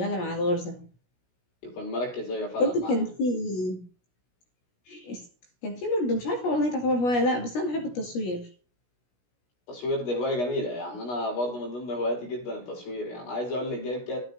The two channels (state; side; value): late; right; 16 ms